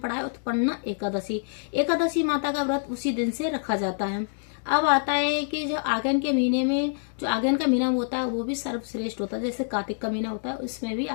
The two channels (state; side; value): silent; right; digital silence